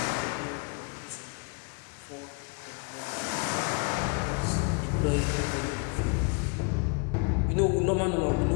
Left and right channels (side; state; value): right; quieter; 35.0 dB